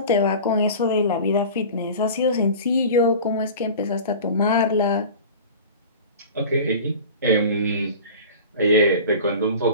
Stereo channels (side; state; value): both; inverted; correlation -0.37